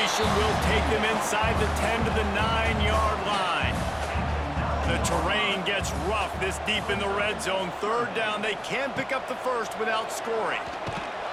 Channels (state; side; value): identical; both; correlation 1.00